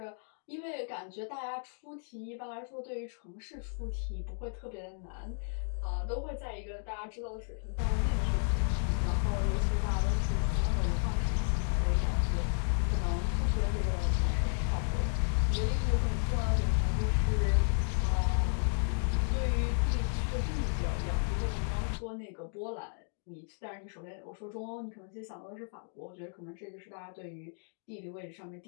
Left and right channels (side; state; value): right; silent; 56 dB below the other